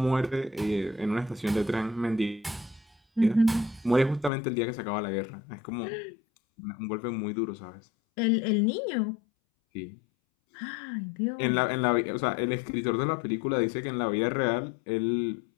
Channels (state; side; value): drops out; right; at 4.3 s